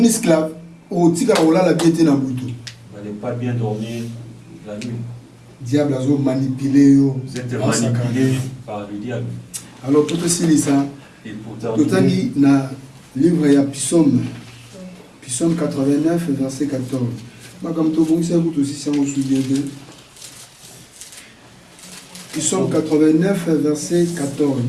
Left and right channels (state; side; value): identical; both; correlation 1.00